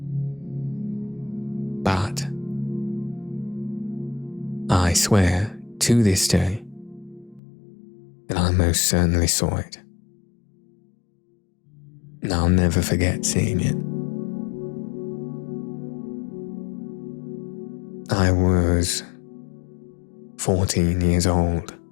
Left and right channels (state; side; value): drops out; right; at 7.4 s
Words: But I swear to this day that I most certainly saw it. And I'll never forget seeing it. I was 14 years old